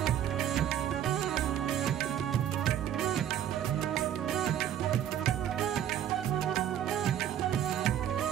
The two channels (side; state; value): left; quieter; 10.4 dB